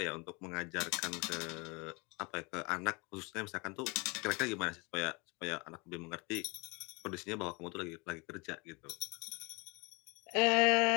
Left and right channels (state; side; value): quieter; right; 28.7 dB